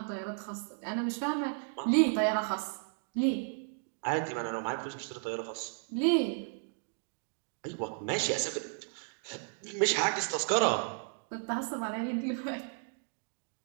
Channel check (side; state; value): left; silent; 55 dB below the other